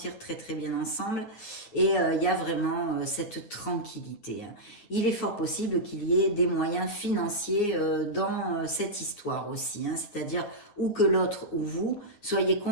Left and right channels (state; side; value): late; right; 9.7 ms